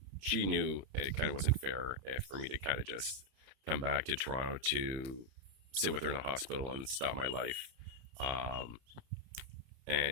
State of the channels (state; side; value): late; left; 31 ms